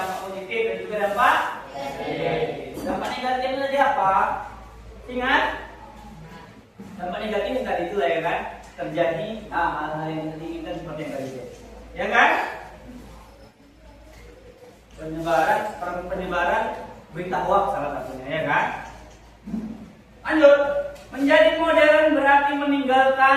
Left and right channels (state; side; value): identical; both; correlation 1.00